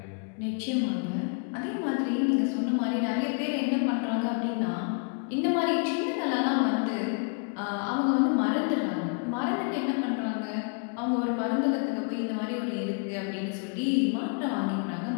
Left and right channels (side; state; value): right; quieter; 39.2 dB